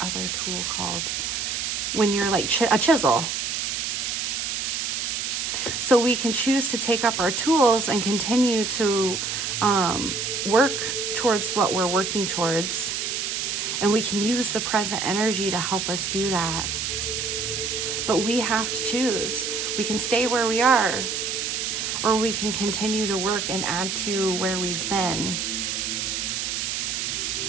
other tool called? When you're like a chisel. So we can choose to take up our tools and continue to work towards what we're working towards. And we can use the present energy to help us do that. But we have to choose. We can stay where we are, or we can continue to work and add to where we've been.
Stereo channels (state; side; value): noise; right; hiss, 2 dB below the sound